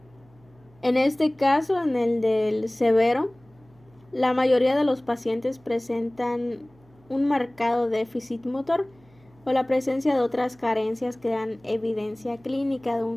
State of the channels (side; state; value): right; noise; hum, 29 dB below the sound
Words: En este caso, en el del severo, la mayoría de los pacientes presentan un marcado déficit motor o la presencia de otras carencias que dan evidencia clínica de